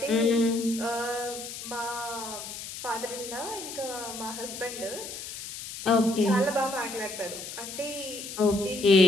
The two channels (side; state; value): left; noise; hiss, 9 dB below the sound